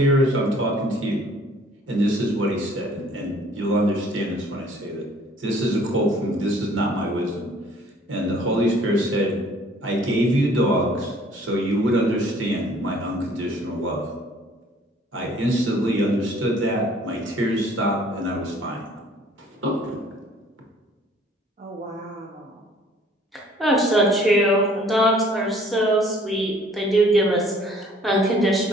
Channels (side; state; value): both; normal; correlation 0.56